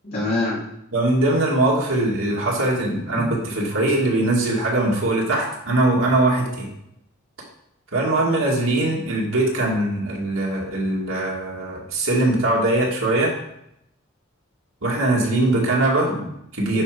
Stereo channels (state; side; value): normal; both; correlation 0.33